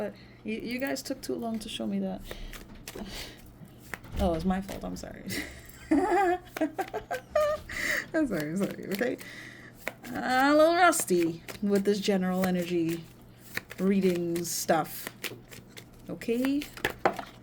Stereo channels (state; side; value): identical; both; correlation 1.00